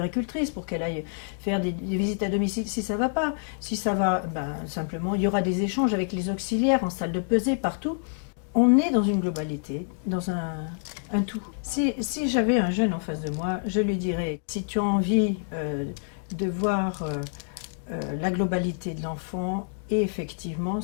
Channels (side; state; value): right; silent; digital silence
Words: pour qu'elle aille faire des visites à domicile si ça ne va pas. Si ça va, simplement, il y aura des échanges avec les auxiliaires en salle de pesée, partout. On est dans une globalité, dans un tout. Si j'avais un jeune en face de moi, je lui dirais, si tu as envie de voir la globalité de l'enfant, et effectivement,